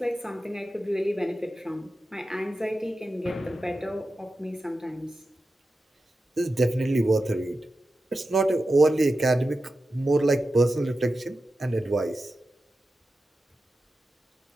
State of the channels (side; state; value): both; normal; correlation 0.92